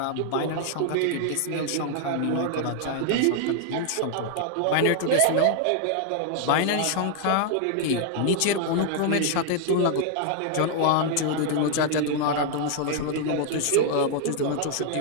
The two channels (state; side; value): different; both; correlation 0.00